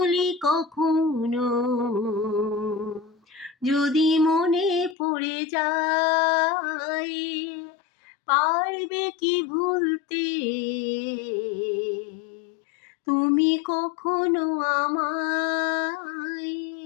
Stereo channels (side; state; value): right; drops out; at 5.0 s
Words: কখনো যদি মনে পড়ে যায়, পারবে কি ভুলতে তুমি কখনো আমায়?